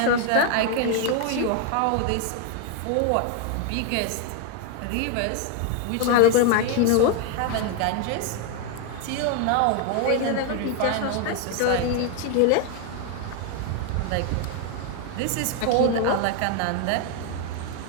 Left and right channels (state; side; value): different; both; correlation 0.01